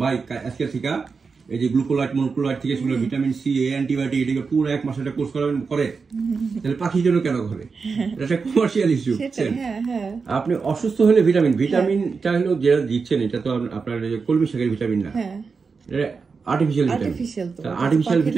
ভাই আজকে থেকে এই যে গ্লুকোলাইট মনোক্লোলাইট থেকে শুরু ভিটামিন সি, অ্যান্টিবায়োটিক, এটাকে পুরো 1 মাস একটা কোর্স করাবেন করে, তাহলে পাখির জন্য কেন করে? এটা একটা কমার্শিয়াল ইস্যু। আপনি অসুস্থ হলে ভিটামিনটা হলো যেটা দিচ্ছেন, এটা তো আপনার কলমি শাকের ভিটামিন না, এটা আর্টিফিশিয়াল ভিটামিন। আর্টিফিশিয়াল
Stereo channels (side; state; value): left; quieter; 5.0 dB